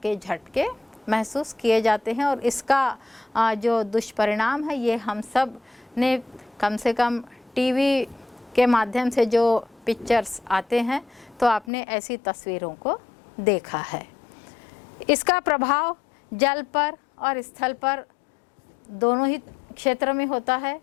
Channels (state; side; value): drops out; right; at 11.7 s